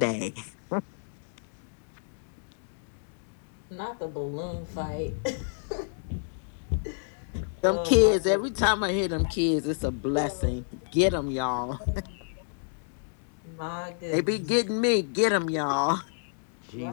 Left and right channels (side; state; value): right; silent; digital silence